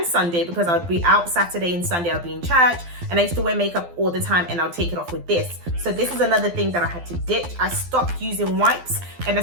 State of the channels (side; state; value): left; late; 12 ms